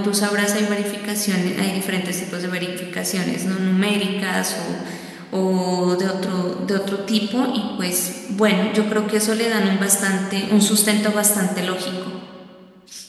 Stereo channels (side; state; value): both; identical; correlation 1.00